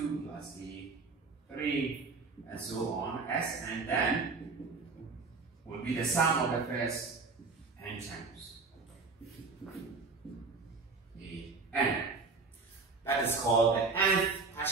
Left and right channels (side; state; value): left; quieter; 4.3 dB